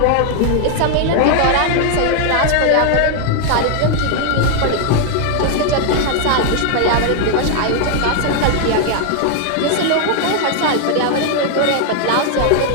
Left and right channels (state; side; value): different; both; correlation 0.00